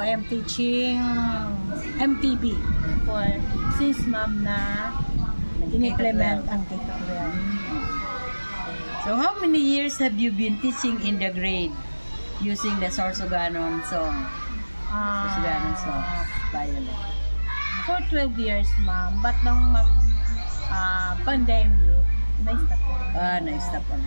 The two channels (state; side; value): inverted; both; correlation -1.00